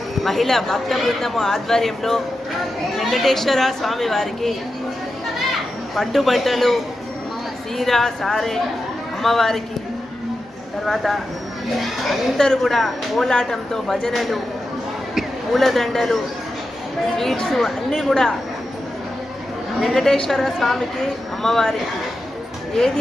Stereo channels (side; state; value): both; normal; correlation 0.90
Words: మహిళా భక్త బృందము ఆధ్వర్యంలో వెంకటేశ్వర స్వామి వారికి పట్టుబట్టలు, సీర, సారె అమ్మవారికి, తర్వాత అందరూ కూడా కోలాటంతో భజనలు, పూలదండలు, స్వీట్స్ అన్నీ కూడా వెంకటేశ్వర స్వామికి, అమ్మవారికి ఏది